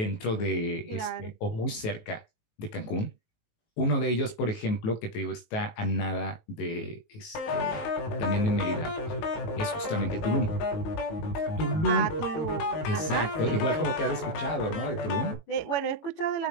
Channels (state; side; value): late; right; 19 ms